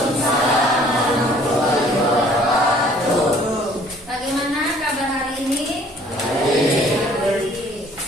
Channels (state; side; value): normal; both; correlation 0.56